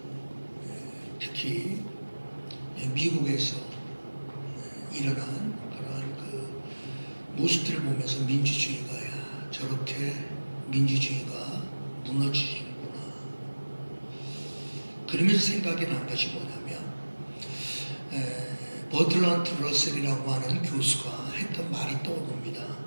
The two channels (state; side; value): inverted; both; correlation -1.00